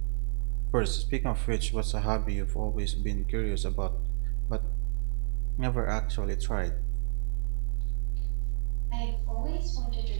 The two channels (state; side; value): silent; left; digital silence